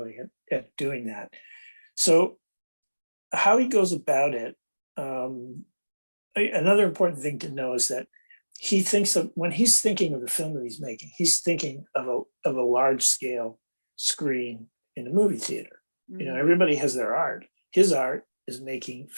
at doing that. So how he goes about it, another important thing to know is that he thinks of, when he's thinking of the film that he's making, he's thinking of a large scale screen in a movie theater. You know, everybody has their art. His art is making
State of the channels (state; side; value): inverted; both; correlation -1.00